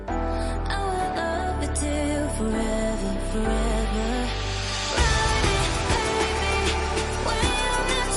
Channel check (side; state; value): both; identical; correlation 1.00